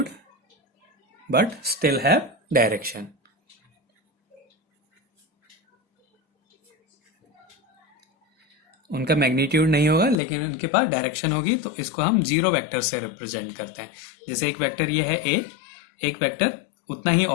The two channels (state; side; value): drops out; right; at 10.2 s